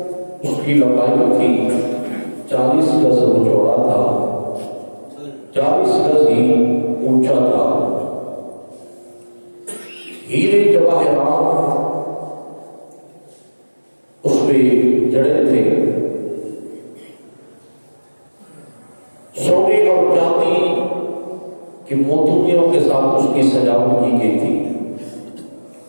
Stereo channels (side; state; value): both; inverted; correlation -1.00